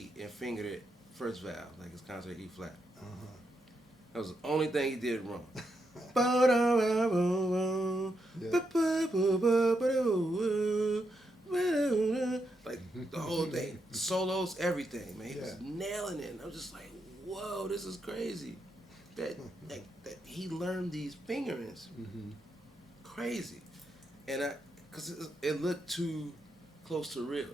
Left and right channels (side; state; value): both; normal; correlation 0.82